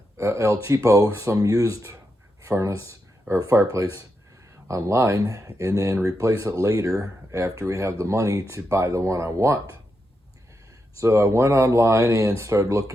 El Cheapo, some used furnace or fireplace online, and then replace it later after we have the money to buy the one I want. So I went online and started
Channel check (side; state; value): both; normal; correlation 0.85